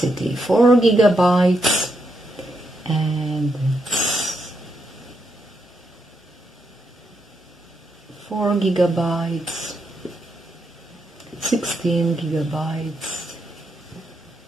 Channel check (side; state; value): both; normal; correlation 0.81